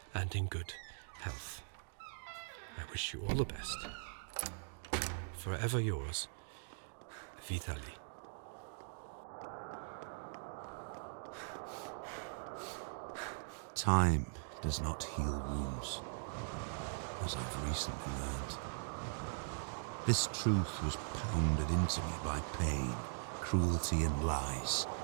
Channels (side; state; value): left; silent; digital silence